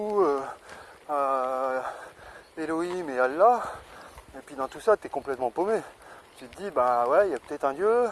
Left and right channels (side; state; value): both; identical; correlation 1.00